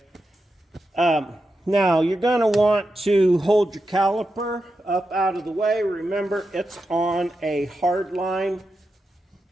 Now, you're going to want to hold your caliper up out of the way. Remember, it's on a hard line.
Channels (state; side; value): normal; both; correlation 0.88